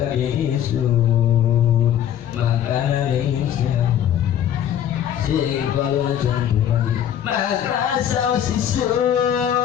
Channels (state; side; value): quieter; right; 10.0 dB